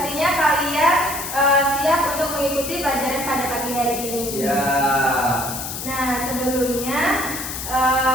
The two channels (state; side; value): noise; left; hiss, 7 dB below the sound